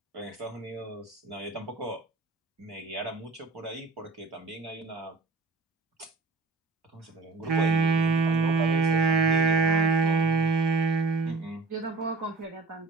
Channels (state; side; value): quieter; left; 3.9 dB